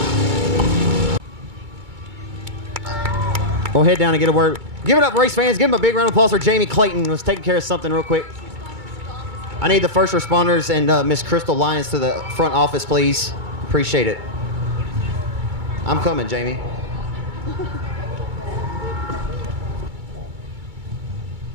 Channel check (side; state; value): left; late; 2.2 ms